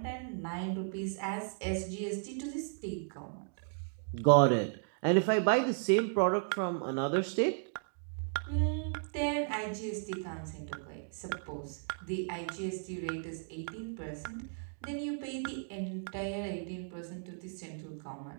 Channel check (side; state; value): left; silent; digital silence